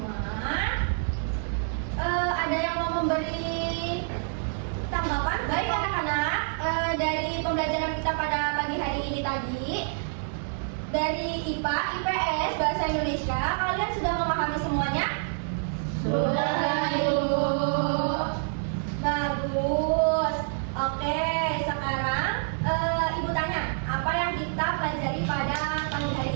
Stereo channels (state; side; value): silent; left; 60 dB below the other